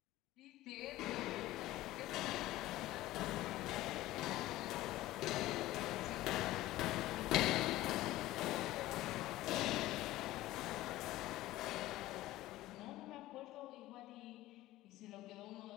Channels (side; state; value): right; quieter; 16.4 dB